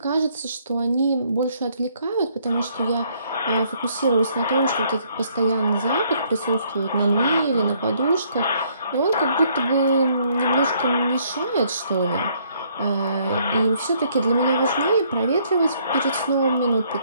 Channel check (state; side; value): inverted; both; correlation -0.67